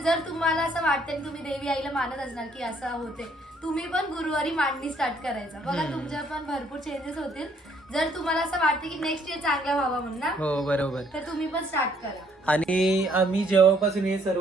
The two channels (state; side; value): normal; both; correlation 0.66